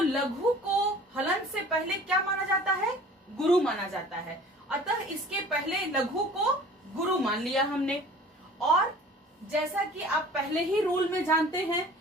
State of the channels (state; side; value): normal; both; correlation 0.46